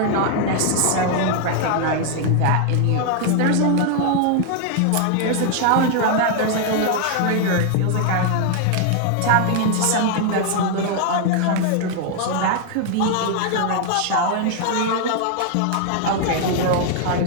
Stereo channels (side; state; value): both; different; correlation 0.00